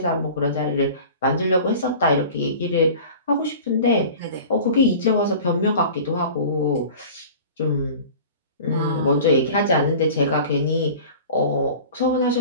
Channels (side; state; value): both; inverted; correlation -0.40